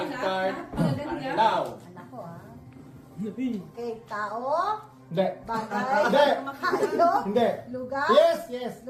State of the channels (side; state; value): both; identical; correlation 1.00